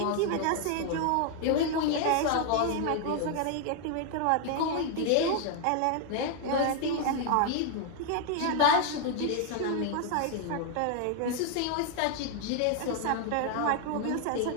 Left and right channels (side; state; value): both; different; correlation 0.00